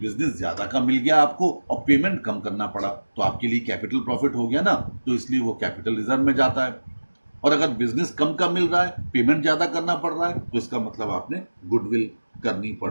ज्यादा का मिल गया आपको और पेमेंट कम करना पड़ा, तो आपके लिए कैपिटल प्रॉफिट हो गया ना, तो इसलिए वो कैपिटल रिजर्व में जाता है। और अगर बिजनेस कम का मिल रहा है, पेमेंट ज्यादा करना पड़ रहा है, तो इसका मतलब आपने गुडविल करनी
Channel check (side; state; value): both; inverted; correlation -1.00